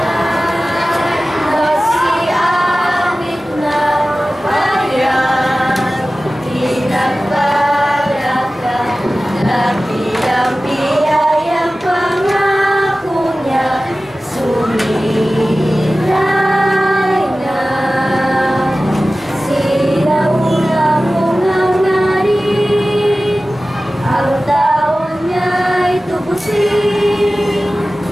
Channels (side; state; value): both; normal; correlation 0.96